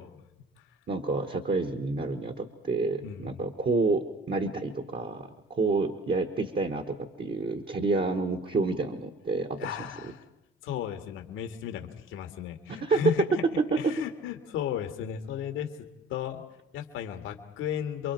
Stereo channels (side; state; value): both; normal; correlation 0.47